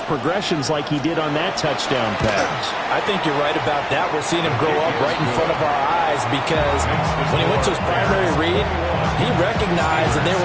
progressions like he did on that touchdown pass. I think you're right about that. We're seeing him grow up right in front of our eyes because when he went to his primary read, he recognized that they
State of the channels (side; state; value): both; identical; correlation 1.00